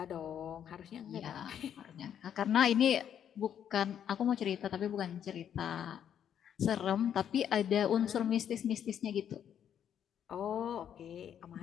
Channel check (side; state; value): right; quieter; 9.2 dB